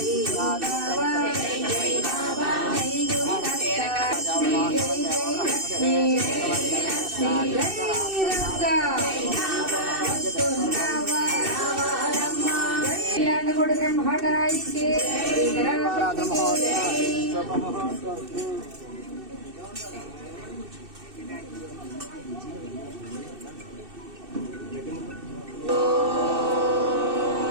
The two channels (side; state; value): left; late; 2.6 ms